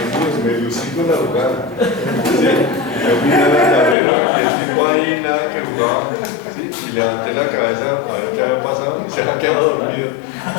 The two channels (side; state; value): right; drops out; at 4.0 s